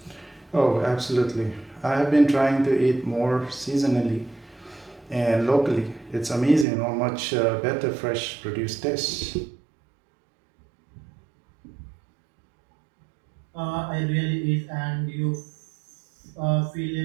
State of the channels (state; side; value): drops out; left; at 6.7 s